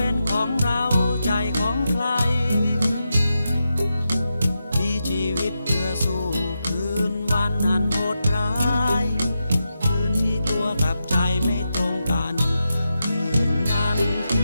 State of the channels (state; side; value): inverted; both; correlation -0.88